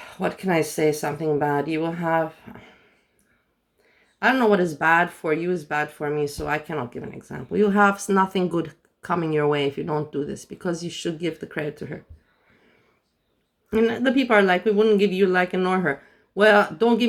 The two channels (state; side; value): identical; both; correlation 1.00